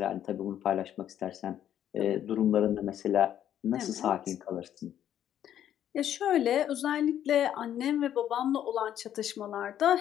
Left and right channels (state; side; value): quieter; right; 10.6 dB